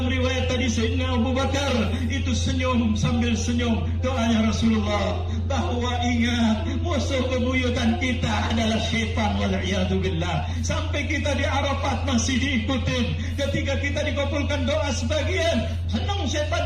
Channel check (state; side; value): identical; both; correlation 1.00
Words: riwayat tadi Sayyidina Abu Bakar, itu senyum sambil senyum. Doanya Rasulullah bahwa ingat, musuh bebuyutan kita adalah syaitan, wal'iyadzubillah. Sampai kita di Arafat masih diikutin. Ketika kita dikabulkan doa sebagian, senang